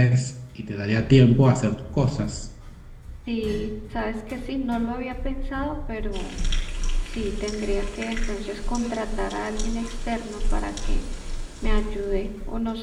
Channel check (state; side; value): identical; both; correlation 1.00